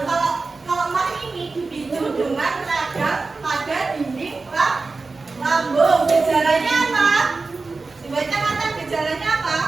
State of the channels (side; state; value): left; quieter; 3.9 dB